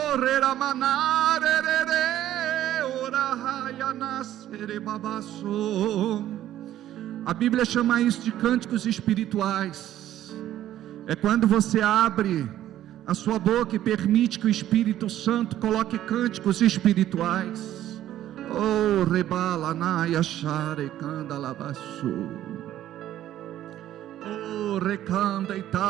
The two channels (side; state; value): left; quieter; 12.6 dB